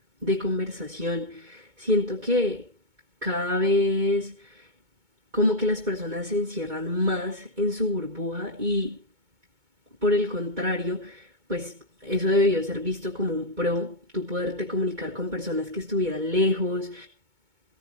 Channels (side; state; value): left; late; 2.2 ms